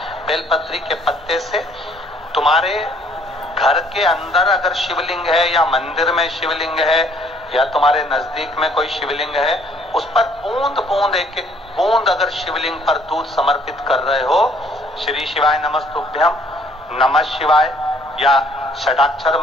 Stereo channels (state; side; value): normal; both; correlation 0.61